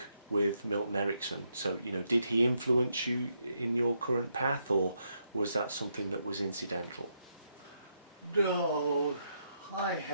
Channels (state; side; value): inverted; both; correlation -0.79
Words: with Milton Erickson. So, did he influence you in your current path, or was that something that was incidental? No, I